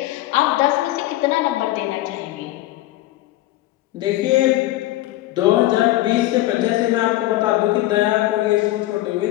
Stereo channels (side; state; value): right; quieter; 16.4 dB